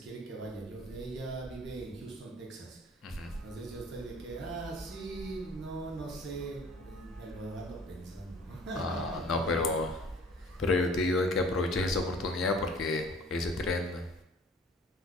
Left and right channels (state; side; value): normal; both; correlation 0.50